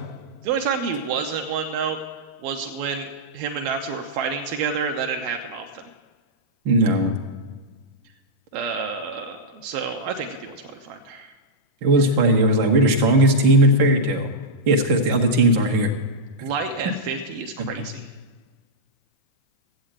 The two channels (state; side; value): late; left; 6.0 ms